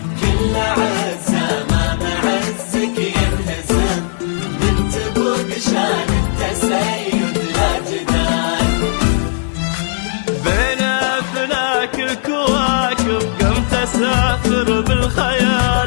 كل عزة ما بعزك يلتزم، بنت ابوك شان التسيد لا جدال. بين افلاك الكواكب قمت اسافر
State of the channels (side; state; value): right; silent; digital silence